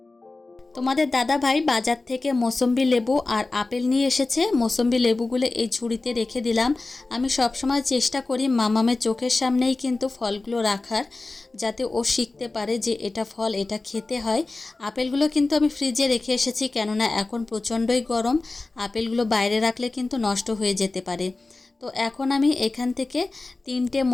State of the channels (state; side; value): quieter; right; 3.3 dB